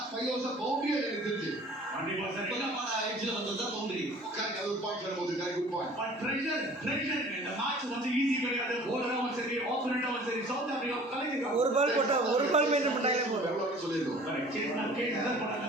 5 ஓவர்ஸ் பவுண்டரியே எனக்கு தெரிஞ்சு எட்ஜ்ல வந்ததா பவுண்டரி. ஒரு பாயிண்ட் வரும்போது குட் பாயிண்ட். பட் ப்ரெஷர் இந்த மேட்ச் வந்து ஈஸி கிடையாது. போலரும் சரி ஆப்போனன்ட்டும் சரி சவுத் ஆப்பிரிக்கா கலக்கிங்க. ஒரு பால் போட்டா ஒரு பால் மெயின்டைன் பண்ணாலே போதும். எவ்வளவு சொல்லிருக்கோம். கேட்னா போறாங்க.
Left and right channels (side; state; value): both; normal; correlation 0.48